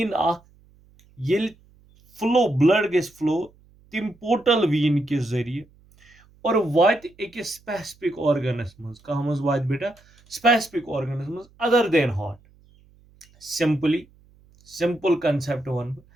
ये फ्लो ब्लड गस फ्लो तिम पोर्टल वीन के जरिए और वात अकिस स्पेसिफिक ऑर्गनस मज कह मज वात बेटा स्पेसिफिक ऑर्गनस मज other than heart. Simple concept one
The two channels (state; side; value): noise; right; hum, 29 dB below the sound